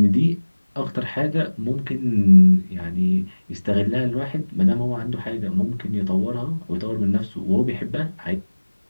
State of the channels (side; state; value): both; inverted; correlation -1.00